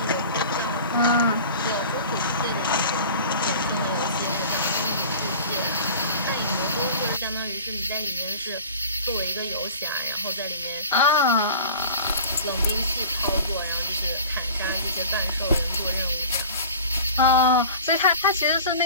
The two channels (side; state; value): both; inverted; correlation -0.40